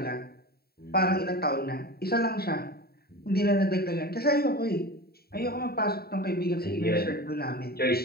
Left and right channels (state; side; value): late; right; 0.45 ms